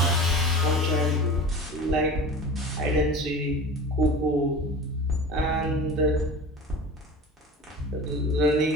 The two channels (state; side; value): normal; both; correlation 0.35